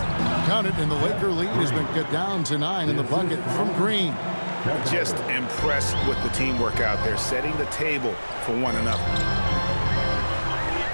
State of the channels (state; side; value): inverted; both; correlation -1.00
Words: Count it, and the Laker lead has been cut down to 9 in the bucket from Green. Just impressed with the teamwork out there, setting the table for one another.